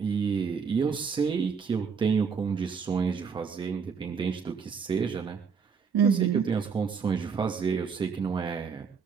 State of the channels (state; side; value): quieter; left; 6.0 dB